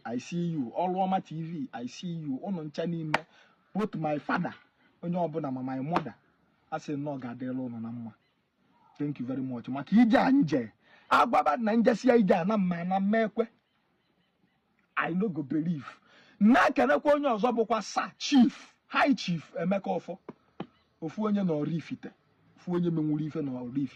I see you. Oluoma TV, I see you. Ono ncha n'ime both my father onye ọbụla ma my mother I say no gadelo no na mma. Thank you very much. Maka ije anje agbaba na njesia ije na mma na mmekwe I no go believe na kenekwa onye ọzọ bụkwa Sir Chief High Chief Emeka ofu onye na Oraifite ofu onye menwuru ife na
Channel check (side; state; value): both; identical; correlation 1.00